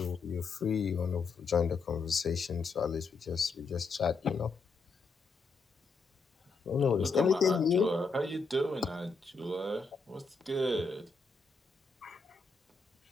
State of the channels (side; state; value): right; quieter; 4.4 dB